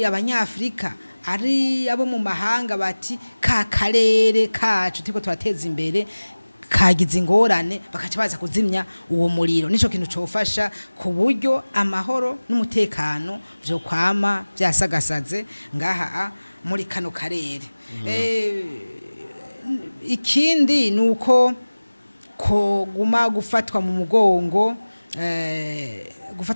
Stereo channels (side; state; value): both; inverted; correlation -1.00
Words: abanyafrika ari abo mu mahanga bati ka karere kacu tiko turateza imbere kagize ingorane bakaca baza kuzimya uwo muriro nico kintu cofasha ku buryo amahoro n'umutekano byo kwama byasagasaze ngaha muri kano karere ikindi nuko ko guma gufatwa mu